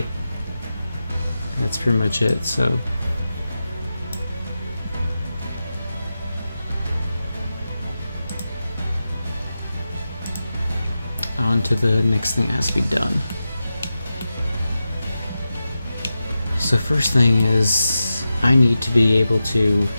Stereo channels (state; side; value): inverted; both; correlation -0.91